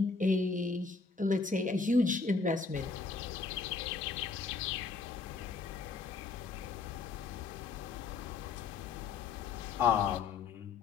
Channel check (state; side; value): quieter; right; 4.6 dB